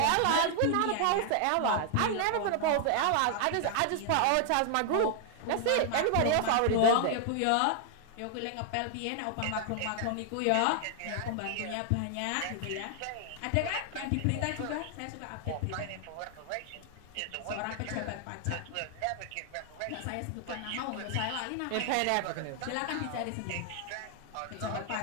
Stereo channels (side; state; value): both; different; correlation 0.00